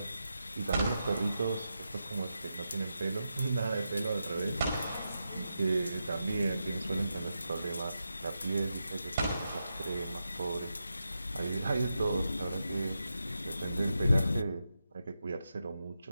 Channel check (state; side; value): inverted; both; correlation -0.88